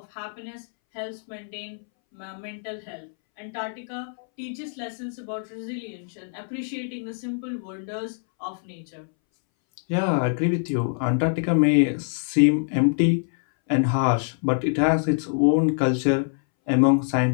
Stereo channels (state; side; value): silent; right; 62 dB below the other